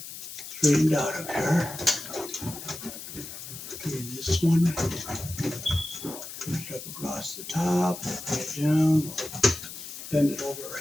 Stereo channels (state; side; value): noise; left; hiss, 11 dB below the sound